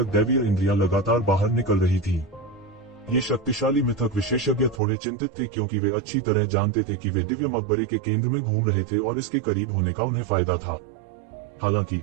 दैवीय इंद्रियां लगातार बाहर निकल रही थीं। ये शक्तिशाली मिथक विशेषज्ञ थोड़े चिंतित थे, क्योंकि वे अच्छी तरह जानते थे कि वे दिव्य मकबरे के केंद्र में घूम रहे थे और इसके करीब होने का उन्हें फायदा था। हालांकि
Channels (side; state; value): left; drops out; at 4.8 s